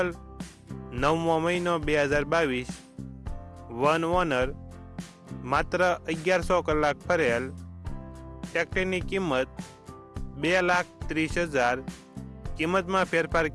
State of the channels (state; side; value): identical; both; correlation 1.00